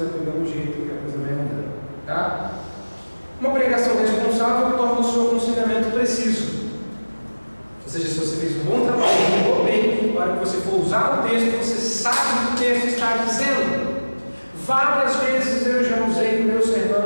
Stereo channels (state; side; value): inverted; both; correlation -1.00